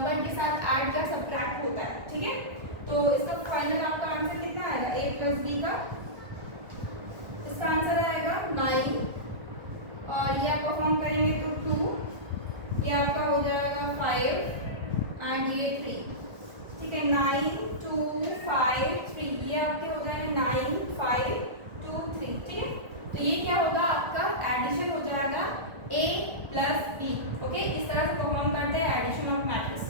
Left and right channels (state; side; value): late; left; 1.4 ms